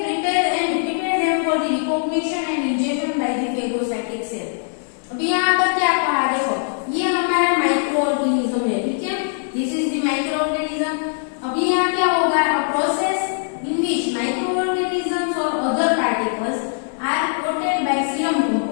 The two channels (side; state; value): right; silent; 62 dB below the other